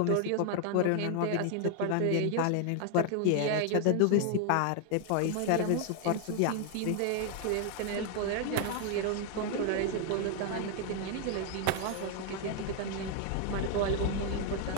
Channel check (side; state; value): both; different; correlation 0.00